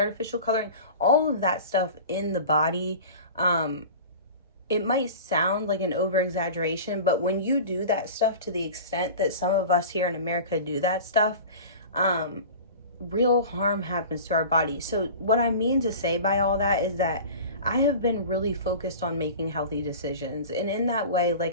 coloring, all of that stuff in the body. It might sound like an over exaggeration, but when you do that stuff to the extent that some of us here in America do that stuff, real harm happens to our body. So what I mean to say by all that is that I have been really focused on making healthy decisions. And in that way,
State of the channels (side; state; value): both; inverted; correlation -0.36